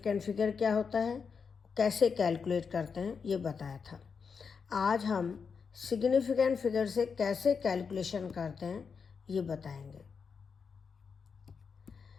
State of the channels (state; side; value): quieter; right; 5.8 dB